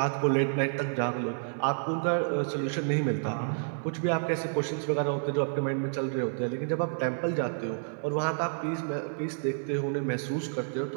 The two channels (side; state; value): left; silent; 58 dB below the other